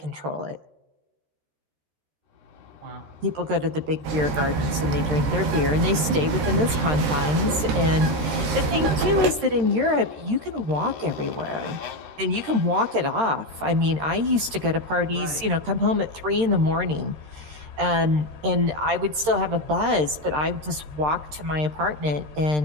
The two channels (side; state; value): left; late; 13 ms